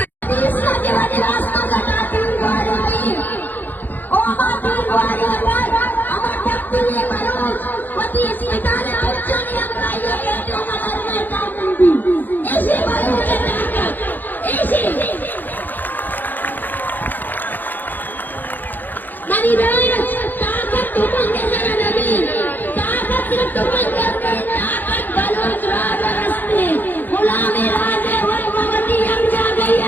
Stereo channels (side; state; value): right; late; 0.087 ms